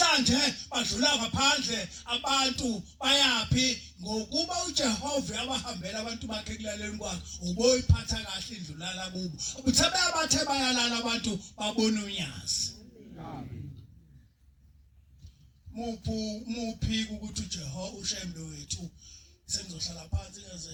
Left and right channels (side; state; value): both; identical; correlation 1.00